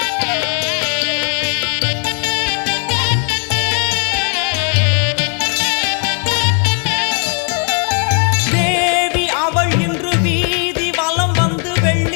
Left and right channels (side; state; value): right; quieter; 39.4 dB